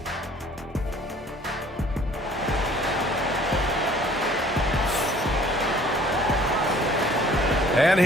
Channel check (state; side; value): normal; both; correlation 0.54